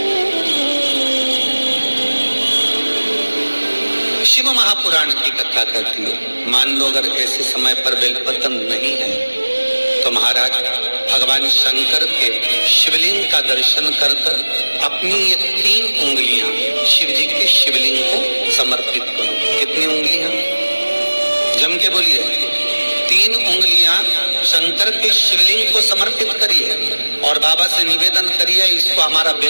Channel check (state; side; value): inverted; both; correlation -1.00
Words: शिव महापुराण की कथा कहती है मान लो अगर ऐसे समय पर बेलपत्र नहीं है तो महाराज भगवान शंकर के शिवलिंग का दर्शन कर अपनी ये 3 उंगलियां शिव जी के शिवलिंग को समर्पित करो। कितनी उंगलियां? जम के बोलिए। 3 उंगलियां शंकर के शिवलिंग को समर्पित करिए और बाबा से निवेदन करिए, इसको हमारा